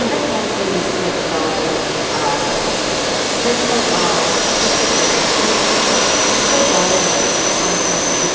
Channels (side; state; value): both; identical; correlation 1.00